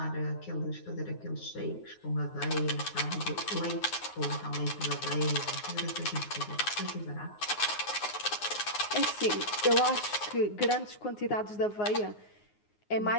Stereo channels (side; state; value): right; late; 9.6 ms